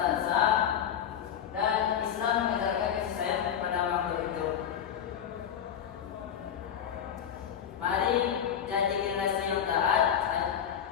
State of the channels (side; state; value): right; quieter; 8.9 dB